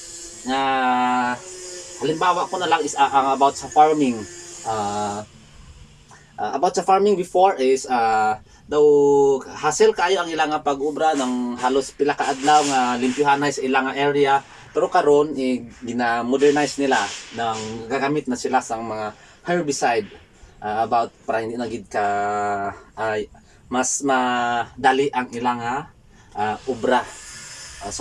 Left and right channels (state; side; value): identical; both; correlation 1.00